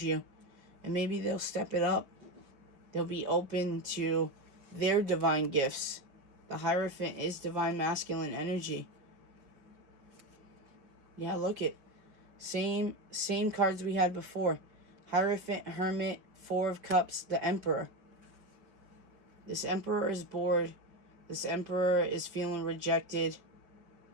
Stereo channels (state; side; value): late; left; 5.2 ms